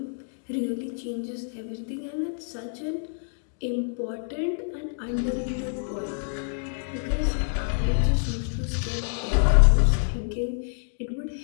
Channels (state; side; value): silent; right; digital silence